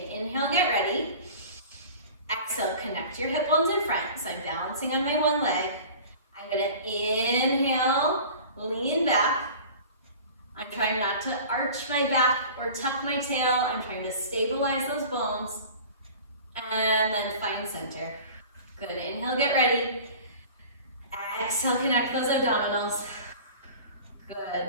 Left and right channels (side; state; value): both; inverted; correlation -0.41